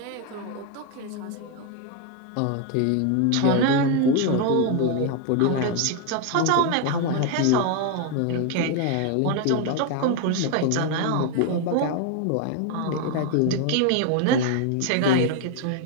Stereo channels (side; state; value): both; different; correlation 0.01